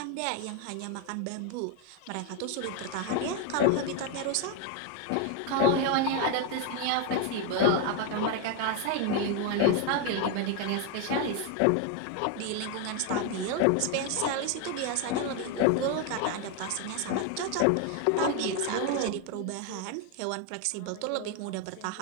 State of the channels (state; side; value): different; both; correlation 0.01